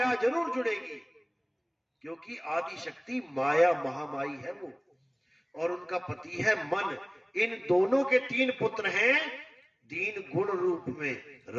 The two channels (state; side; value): identical; both; correlation 1.00